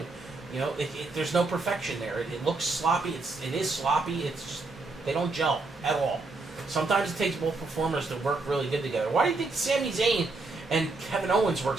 You know, there's no perfection there. It looks sloppy. It is sloppy. It's just, they don't gel at all. Sometimes it takes both performers to work really good together. Why do you think Sami Zayn and Kevin Owens work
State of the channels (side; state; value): left; quieter; 3.5 dB